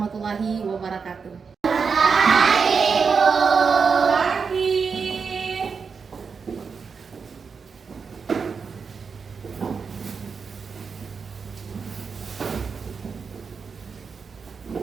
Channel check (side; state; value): left; quieter; 5.5 dB